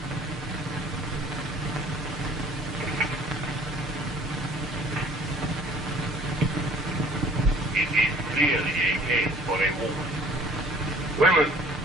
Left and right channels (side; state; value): both; normal; correlation 0.53